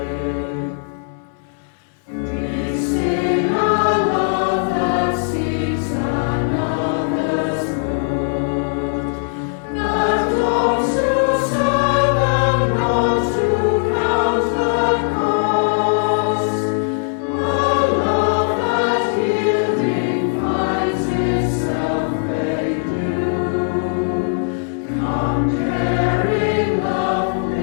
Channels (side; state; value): right; silent; digital silence